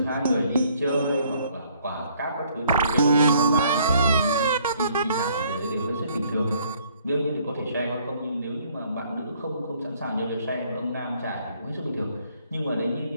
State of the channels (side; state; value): both; inverted; correlation -0.63